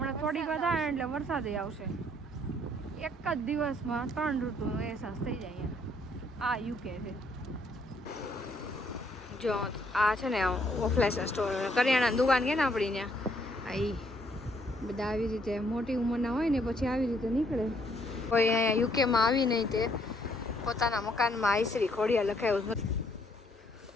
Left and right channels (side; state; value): both; normal; correlation 0.68